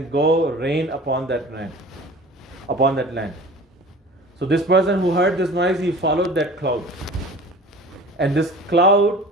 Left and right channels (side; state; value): both; normal; correlation 0.41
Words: go rain upon that land. So this person who heard this noise, he followed that cloud. And this cloud